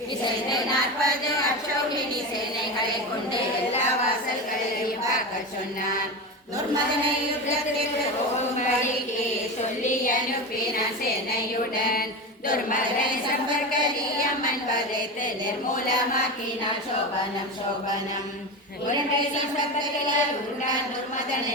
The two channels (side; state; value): both; normal; correlation 0.23